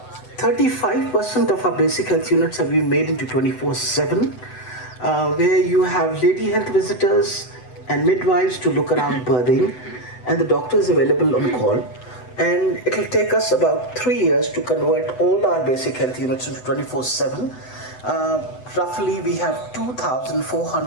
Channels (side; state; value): right; late; 8.0 ms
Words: 35% of our basic health units have been made into 24/7, where you have lady health visitors and midwives to look around birthing, and the doctor is available on call. And it will take us about 3 years to convert all our basic health units into 24/7. Roughly we have